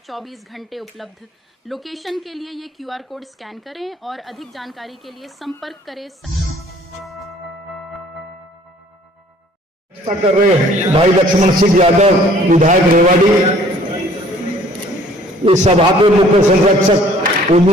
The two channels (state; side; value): normal; both; correlation 0.55